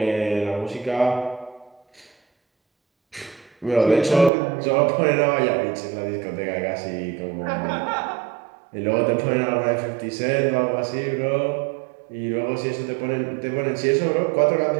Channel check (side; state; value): left; drops out; at 4.3 s